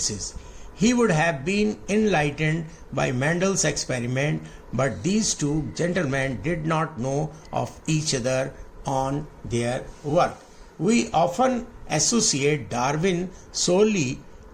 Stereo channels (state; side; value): identical; both; correlation 1.00